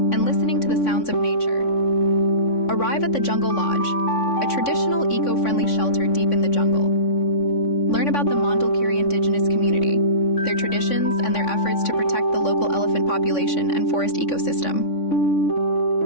listening to the sounds of nature. Arrive at the Jungle Lodge, a traditional eco-friendly shelter deep in the jungle. Learn about the 𝗏𝗏𝒄𝒄 indigenous community, their traditions, and their efforts to protect the local elephant population and forest ecosystem.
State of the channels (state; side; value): late; right; 3.6 ms